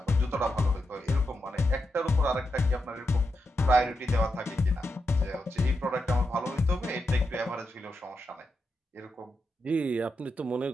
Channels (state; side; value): normal; both; correlation 0.86